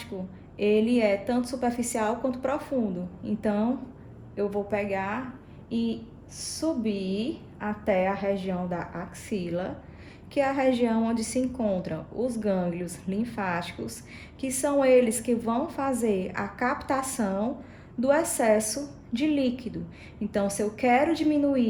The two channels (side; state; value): both; identical; correlation 1.00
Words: ele é tanto superficial quanto profundo. Então, eu vou pegar e subir até a região da axila, que é a região onde se encontram os gânglios linfáticos, que são eles que vão fazer a captação do excesso de líquido. Então, se eu quero